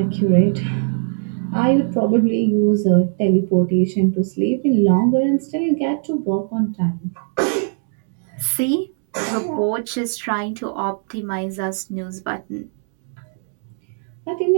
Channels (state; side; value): silent; left; 65 dB below the other